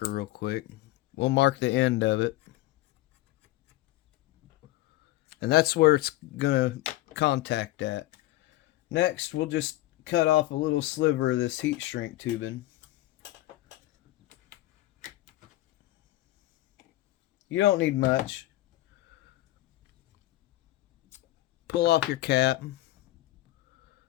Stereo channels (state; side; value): quieter; right; 16.8 dB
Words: real quick. We'll mark the end of it. And that's where it's going to contact at. Next, we'll just cut off a little sliver of this heat shrink tubing. You don't need much. Pull off your cap.